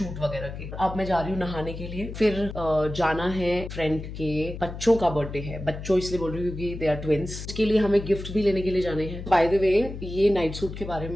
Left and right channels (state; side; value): noise; left; hum, 9 dB below the sound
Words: वगैरह के। अब मैं जा रही हूँ नहाने के लिए, फिर जाना है फ्रेंड के बच्चों का बर्थडे है। बच्चों इसलिए बोल रही हूँ क्योंकि दे आर ट्विंस। इसके लिए हमें गिफ्ट भी लेने के लिए जाने हैं। बाय द वे, ये नाइट सूट के बारे